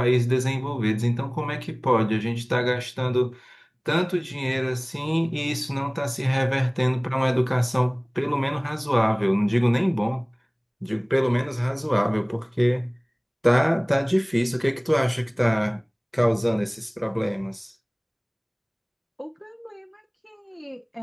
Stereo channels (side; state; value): both; identical; correlation 1.00